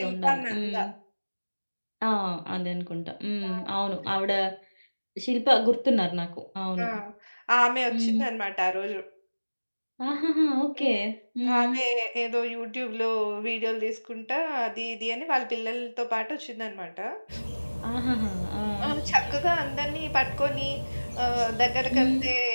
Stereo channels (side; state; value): both; inverted; correlation -1.00